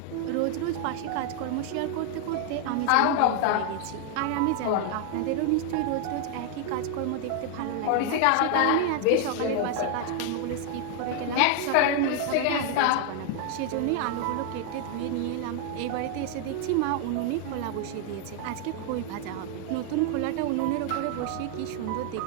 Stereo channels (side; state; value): both; different; correlation 0.00